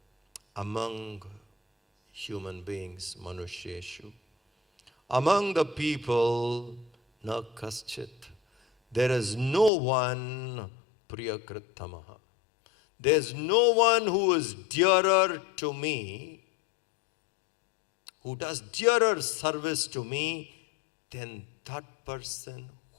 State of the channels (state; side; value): drops out; right; at 9.7 s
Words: among human beings, manusheshu, among the people, na kaschit, there is no one priyakritamaha. There's no one who is dearer to me, who does dearer service to me than that person